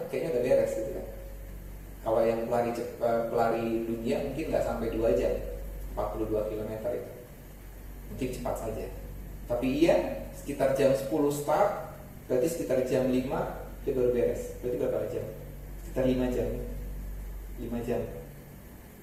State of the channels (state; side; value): identical; both; correlation 1.00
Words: kayaknya udah beres gitu kan. Kalau yang pelari dunia mungkin nggak sampai 2 jam, 42 km itu mungkin cepat saja. Tapi ia sekitar jam 10 start, berarti sekitar jam 5 dia baru beres. Berarti berapa jam? Sekitar 5 jam. 5 jam.